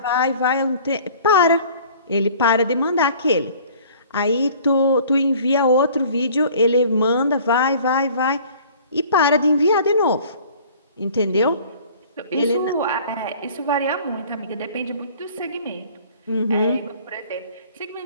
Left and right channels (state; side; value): inverted; both; correlation -0.50